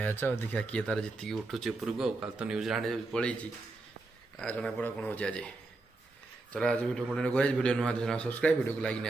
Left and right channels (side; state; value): left; quieter; 3.3 dB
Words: ଆଉ ଦେଖିବା କିଏ ତାର ଜିତିକି ଉଠୁଛି ଉପରକୁ। ଆଉ କାଲି ତ ନ୍ୟୁଜିଲାଣ୍ଡ ପଳେଇଛି, ଜଣାପଡ଼ା କ'ଣ ହେଉଛି ଆଜି। ଚଲ ଆଜି ଭିଡ଼ିଓ କଣ୍ଟିନ୍ୟୁ କରିବା। ଭିଡ଼ିଓ ନୂଆ ସବସ୍କ୍ରାଇବ୍, ଭିଡ଼ିଓକୁ ଲାଇକ୍